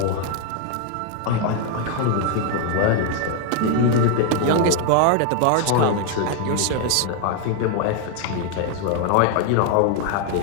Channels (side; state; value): both; different; correlation 0.01